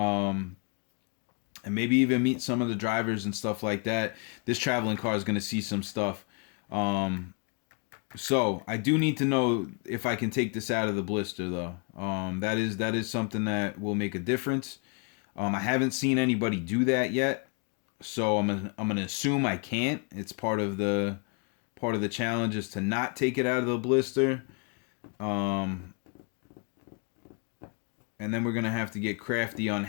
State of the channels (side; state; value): right; quieter; 34.7 dB